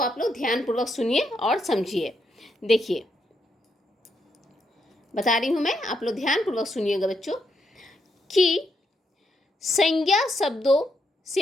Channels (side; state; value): both; normal; correlation 0.79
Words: आप लोग ध्यानपूर्वक सुनिए और समझिए। देखिए बता रही हूँ मैं, आप लोग ध्यानपूर्वक सुनिएगा बच्चों, कि संज्ञा शब्दों